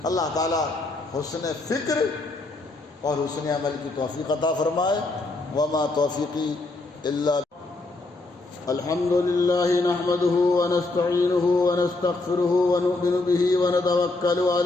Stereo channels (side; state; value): right; quieter; 3.1 dB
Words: اللہ تعالیٰ حسن فکر اور حسن عمل کی توفیق عطا فرمائے۔ وما توفیقی الا الحمد للہ نحمده ونستعینه ونستغفره ونؤمن به ونتوکل